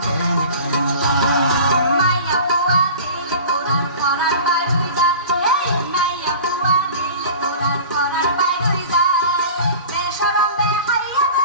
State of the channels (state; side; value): inverted; both; correlation -0.39